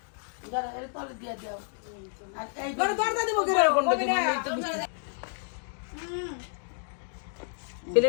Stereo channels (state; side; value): silent; right; digital silence